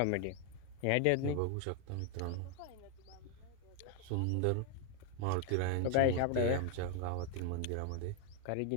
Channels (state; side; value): different; both; correlation 0.01